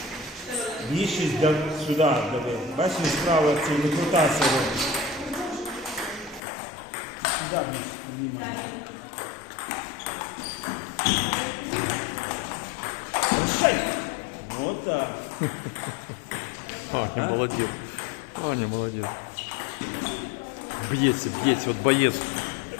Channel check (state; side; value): drops out; right; at 6.4 s